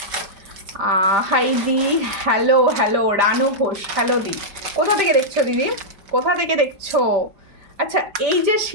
হাই দি, hello hello, Ranu Ghosh, hello দি, কোথা থেকে দেখছো দিদি, কোথা থেকে দেখছো? আচ্ছা এই যে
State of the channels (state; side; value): late; left; 5.1 ms